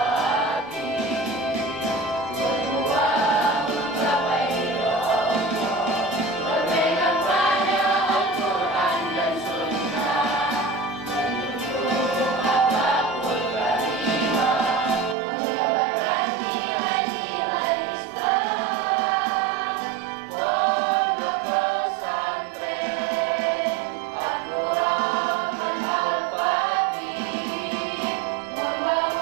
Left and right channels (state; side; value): drops out; left; at 15.2 s